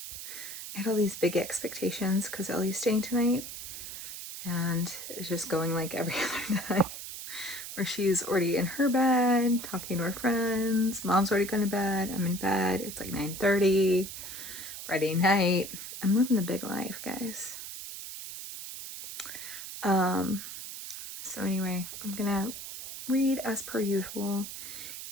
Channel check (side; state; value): right; noise; hiss, 9 dB below the sound